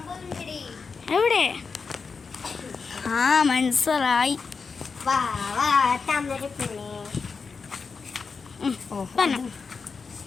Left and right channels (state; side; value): quieter; right; 5.0 dB